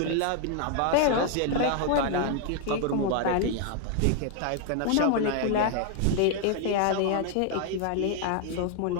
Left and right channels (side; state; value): both; different; correlation 0.00